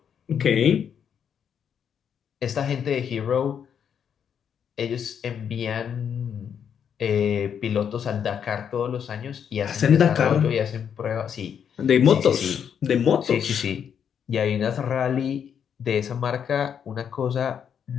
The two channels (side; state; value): right; quieter; 8.0 dB